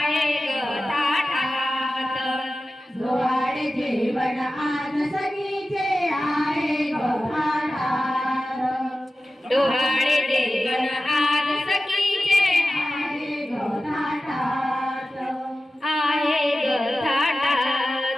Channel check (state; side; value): normal; both; correlation 0.94